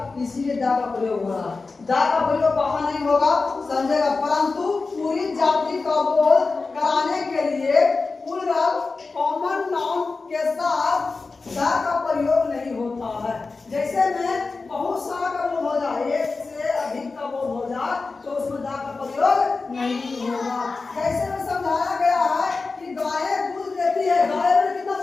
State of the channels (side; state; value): right; quieter; 4.0 dB